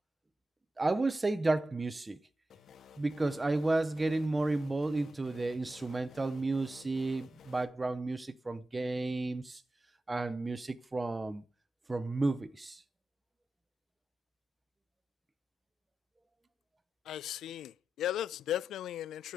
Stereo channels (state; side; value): normal; both; correlation 0.92